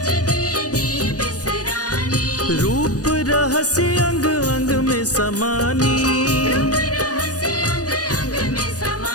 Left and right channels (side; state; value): right; late; 0.68 ms